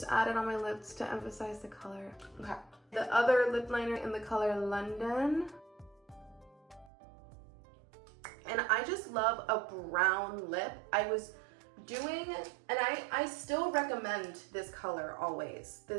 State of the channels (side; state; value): left; drops out; at 6.9 s